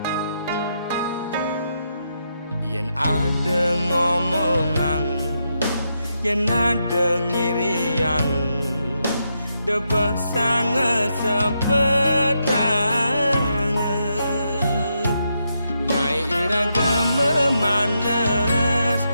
yen ada ngomongan yen ada ngiriang debah sangat sepetang ngai iraga memanas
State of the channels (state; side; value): inverted; both; correlation -0.82